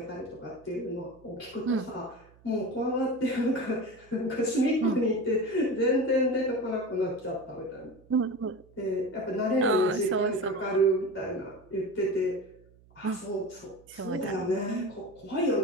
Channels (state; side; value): noise; right; hum, 27 dB below the sound